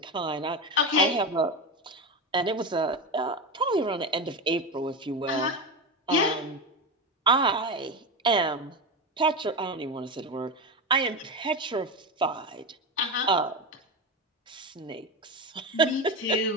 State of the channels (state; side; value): normal; both; correlation 0.18